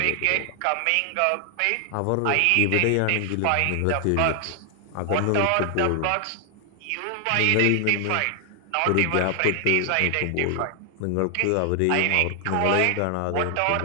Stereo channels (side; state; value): both; different; correlation 0.00